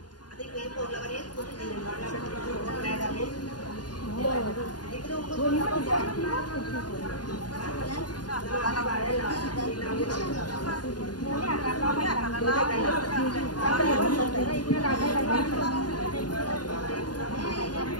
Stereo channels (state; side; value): late; right; 0.70 ms